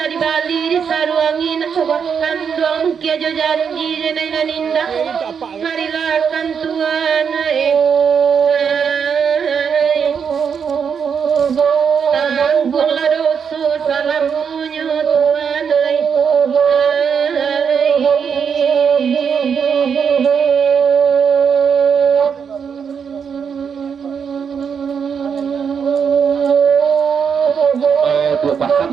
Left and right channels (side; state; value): left; quieter; 6.8 dB